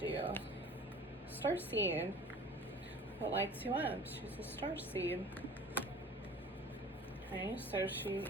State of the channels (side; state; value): both; normal; correlation 0.44